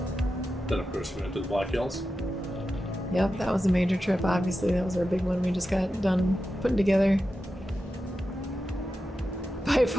Then, of course, we went to the Black Hills. Yep, that was a major trip. Obviously, that was our big one we just got done putting together. By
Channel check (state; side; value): normal; both; correlation 0.91